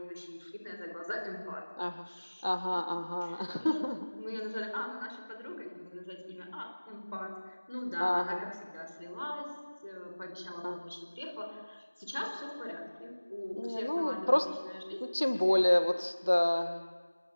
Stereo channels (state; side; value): inverted; both; correlation -1.00